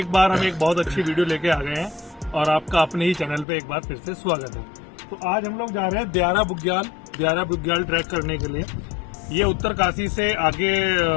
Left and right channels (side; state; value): right; drops out; at 3.5 s